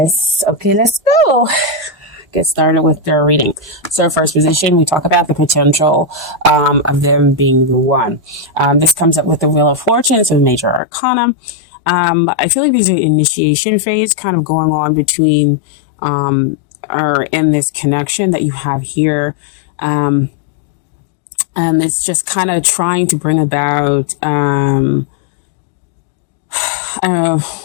go. Get started with their reading. So first position, we talk about the potential of them being the one. This comes up with the Wheel of Fortune, so major arcana. I feel like there's an initiation phase kind of going on between or in this connection that you have here. And it's just kind of trying to bring about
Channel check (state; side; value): drops out; right; at 10.8 s